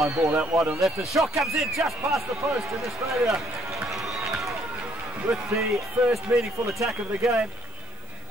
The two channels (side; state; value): right; noise; hiss, 29 dB below the sound